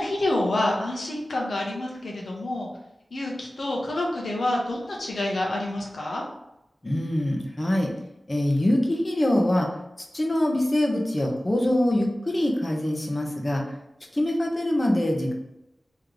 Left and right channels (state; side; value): normal; both; correlation 0.96